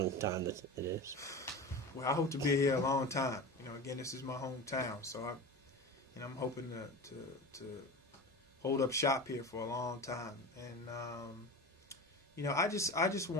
time it is? Well, I hope to be here a long time. Again, this is my hometown, so I'm hoping to hold up shop here for a long time. And I just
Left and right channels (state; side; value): normal; both; correlation 0.29